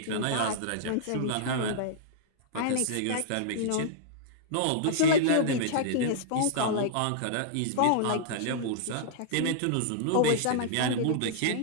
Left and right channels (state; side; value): different; both; correlation -0.01